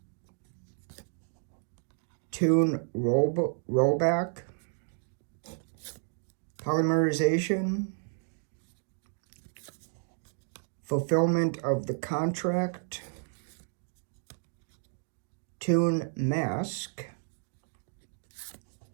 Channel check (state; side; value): silent; left; 57 dB below the other